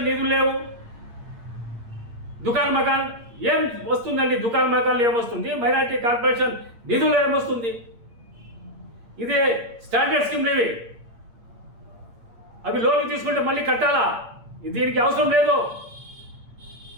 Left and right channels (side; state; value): left; late; 8.6 ms